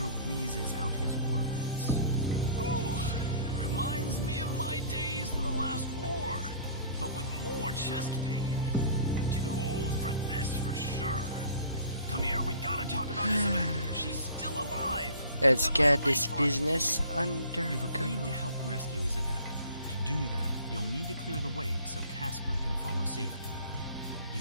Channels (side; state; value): both; inverted; correlation -0.48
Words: wheezes out his words. Ooh, reminds me of my days in the last war, but with more chest pain. Too old for this for sure. Come here, we gotta talk about Isabel. She's still alive. Let's get this business under You've agreed to control. help rescue Isabel. To do that, you'll need to clear the way so Casper can follow safely. He